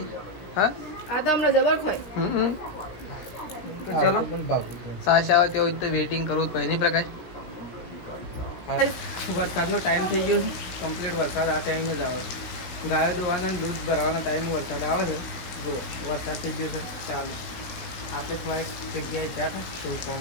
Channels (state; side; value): late; right; 17 ms